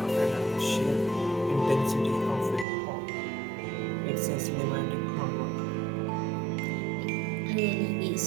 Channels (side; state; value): left; drops out; at 2.7 s